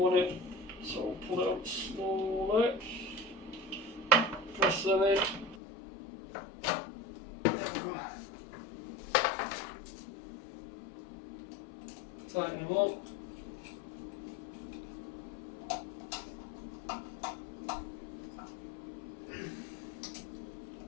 it. So pull it up slowly, press them in, tighten them up.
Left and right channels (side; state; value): right; drops out; at 5.6 s